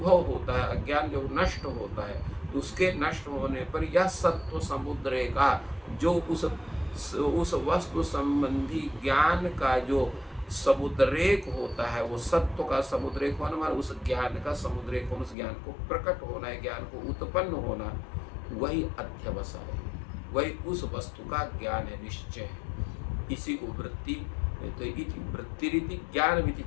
होता है, अज्ञान जो नष्ट होता है, तो उसके नष्ट होने पर यह सत्व समुद्र का जो उस वस्तु संबंधी ज्ञान का जो समुद्रेक होता है, वो सत्व का समुद्रेक होना हमारा उस ज्ञान का समुद्रेक होना, उस ज्ञान को प्रकट होना है, ज्ञान को उत्पन्न होना, वही अध्यवसाय है, वही उस वस्तु का ज्ञान है, निश्चय है। इसी को वृत्ति, तो इति वृत्ति रीति ज्ञान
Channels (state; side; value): drops out; right; at 15.4 s